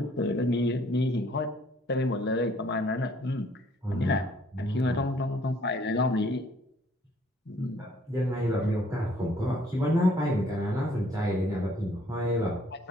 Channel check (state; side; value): normal; both; correlation 0.61